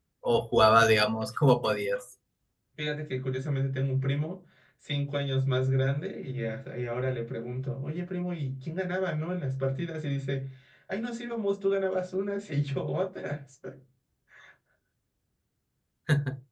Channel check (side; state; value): both; identical; correlation 1.00